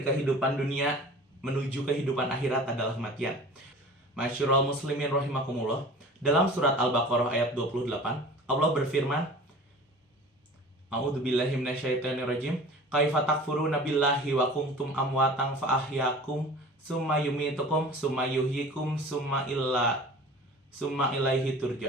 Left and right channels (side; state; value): both; normal; correlation 0.41